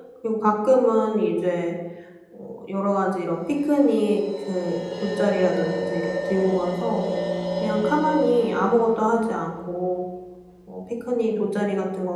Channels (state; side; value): identical; both; correlation 1.00